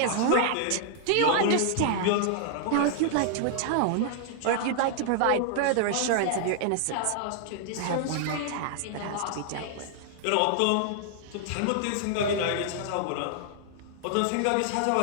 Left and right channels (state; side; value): different; both; correlation 0.00